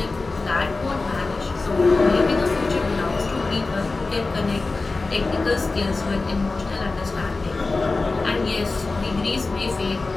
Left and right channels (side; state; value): right; quieter; 3.6 dB